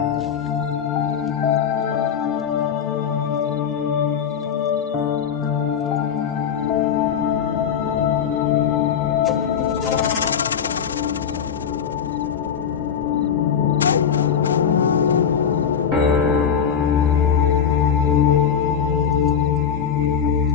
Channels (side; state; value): right; quieter; 7.7 dB